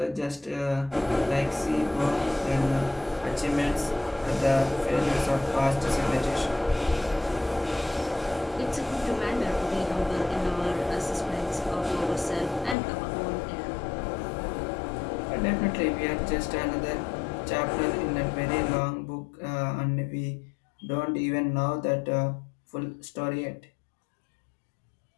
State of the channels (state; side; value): drops out; right; at 12.8 s